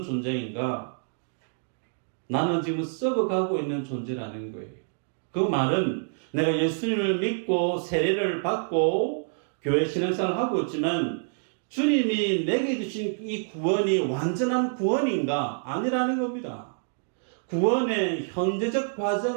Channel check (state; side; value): silent; left; digital silence